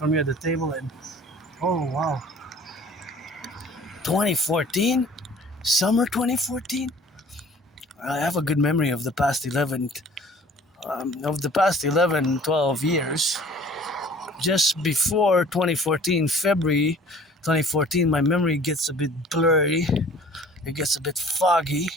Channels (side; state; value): both; normal; correlation 0.50